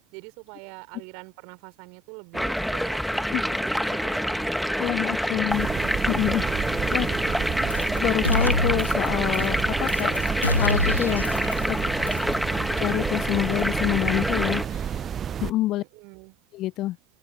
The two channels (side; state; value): both; normal; correlation 0.56